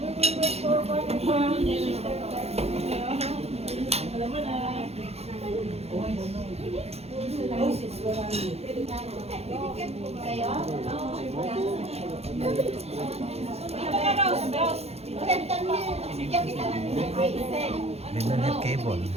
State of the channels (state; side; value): late; left; 0.30 ms